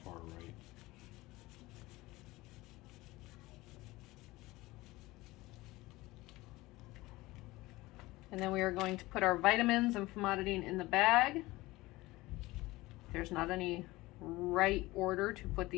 right. And then we are going to put our vitamins and famotidine in the bag. There's not any right order to put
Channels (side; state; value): right; quieter; 19.8 dB